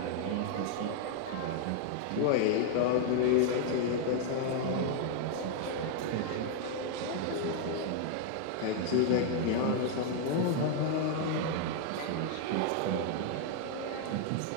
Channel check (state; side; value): different; both; correlation 0.00